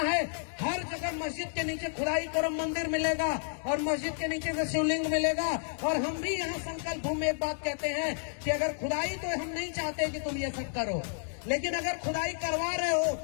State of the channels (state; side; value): silent; right; digital silence